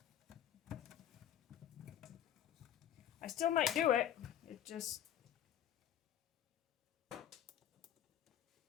I still might do it. It just...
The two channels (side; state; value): right; quieter; 10.9 dB